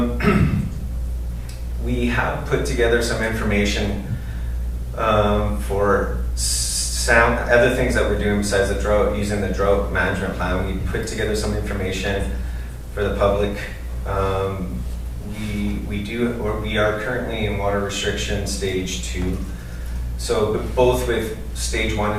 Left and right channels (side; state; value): both; identical; correlation 1.00